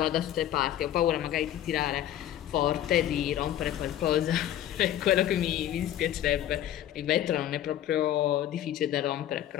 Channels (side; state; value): right; quieter; 11.8 dB